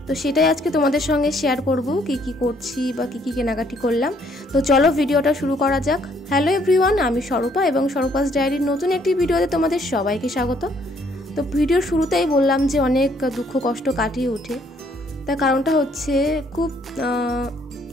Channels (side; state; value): both; normal; correlation 0.65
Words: তো সেটাই আজকে তোমাদের সঙ্গে শেয়ার করব, কি কি করছি বা কি কি কেনাকাটি করলাম। তো চলো ভিডিওটা শুরু করা যাক। হ্যালো এভরিওয়ান, আমি স্বরূপা এবং স্বরূপাস ডায়েরির নতুন একটি ভিডিওতে তোমাদের সবাইকে স্বাগত। তো ভিডিওর শুরুতেই বললাম যে অনেক দুঃখ কষ্ট কাটিয়ে উঠে, তার কারণটা হচ্ছে খুব